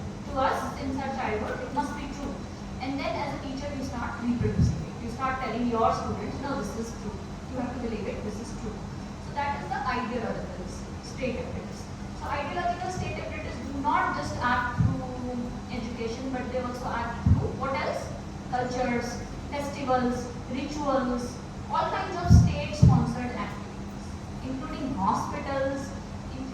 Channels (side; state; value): both; identical; correlation 1.00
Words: us since our childhood, it must be true. And then as a teacher, you start reproducing it. You start telling your students, no, this is true. You have to believe it, this is true. So that is the ideological state apparatus. So ideological state apparatus do not just act through education, but they also act through what else? Cultures, festivals, rituals, all kinds of state-sponsored activities, including hospitals,